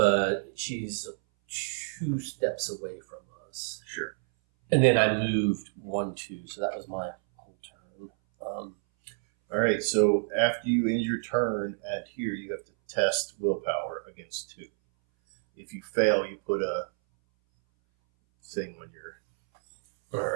she's 2 steps away from us. Sure. And then I moved 1, 2, so that was my whole turn. All right. So after you end your turn at here, you have to test willpower against 2. If you fail, you put a thing on your. All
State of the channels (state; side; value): silent; left; 59 dB below the other